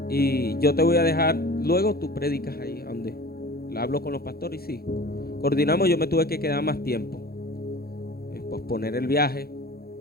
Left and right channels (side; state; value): right; late; 0.45 ms